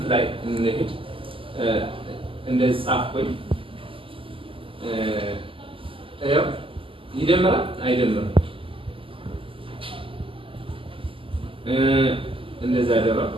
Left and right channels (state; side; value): late; left; 0.25 ms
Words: ላይ እንሄድ እንደዚህ ጻፍኩኝ። ያው ይደምራል አይደምርም? እንደዛ ያደረው